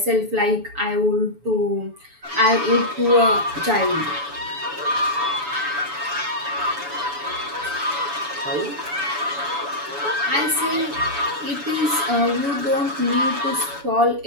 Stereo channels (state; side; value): late; left; 7.0 ms